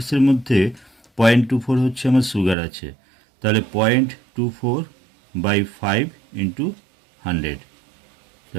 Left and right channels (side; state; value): left; drops out; at 2.6 s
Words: মধ্যে 0.24 হচ্ছে আমার সুগার আছে। তাহলে 0.24/5 ইন্টু 100।